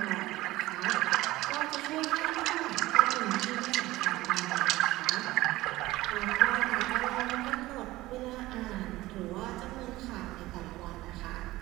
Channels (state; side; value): quieter; left; 17.9 dB